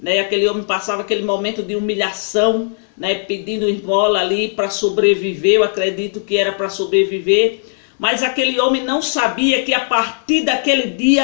Aquele homem passava aquele momento de humilhação, né? Pedindo esmola ali para sobreviver. Eu acredito que era para sobreviver. Mas aquele homem não sabia que a partir daquele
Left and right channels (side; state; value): right; silent; digital silence